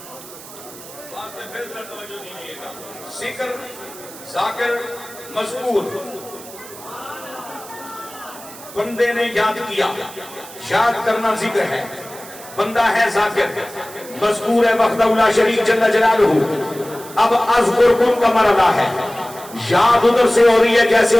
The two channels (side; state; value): right; noise; hiss, 17 dB below the sound